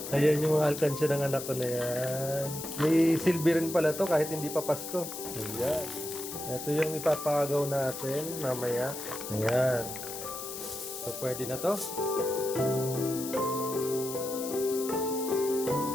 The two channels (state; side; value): noise; left; hiss, 8 dB below the sound